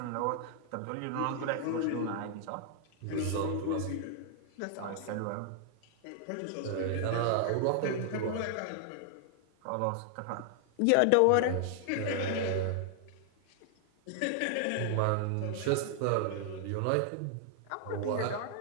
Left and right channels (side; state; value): both; different; correlation 0.00